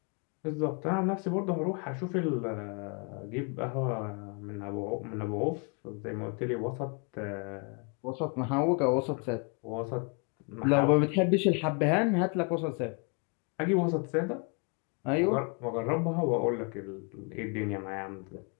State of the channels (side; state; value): right; quieter; 35.1 dB